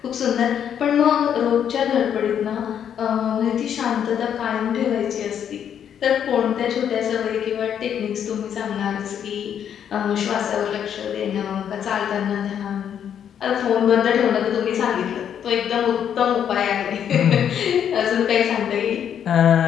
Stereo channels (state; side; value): quieter; right; 8.9 dB